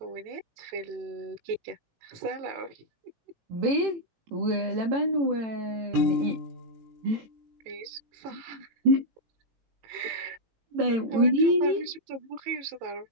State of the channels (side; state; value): left; late; 18 ms